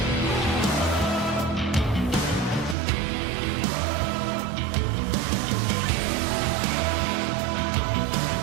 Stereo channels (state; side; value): drops out; left; at 2.8 s